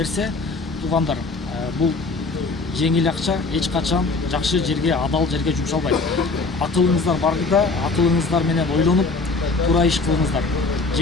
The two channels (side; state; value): right; quieter; 3.8 dB